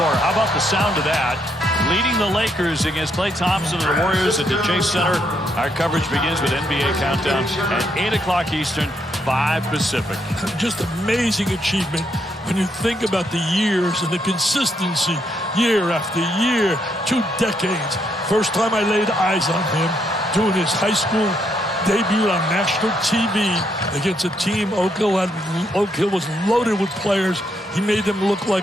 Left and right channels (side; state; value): both; normal; correlation 0.76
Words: How about the sound of that? Leading the Lakers against Klay Thompson and the Warriors at the Chase Center. Our coverage begins with NBA Countdown at 8 o'clock Eastern, 5 Pacific. Just amazing achievement when you think about the years and the consistency, year after year, 2 decades. First time I laid eyes on him doing his high school debut on national TV against a team Oak Hill was loaded with players. He made them look